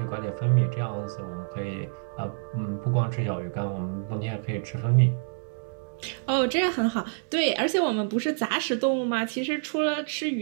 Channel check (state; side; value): silent; left; digital silence